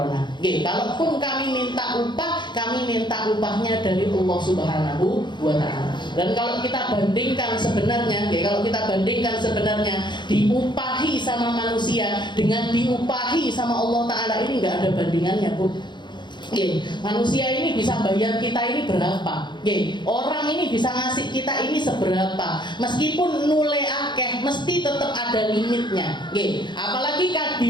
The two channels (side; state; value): right; late; 0.22 ms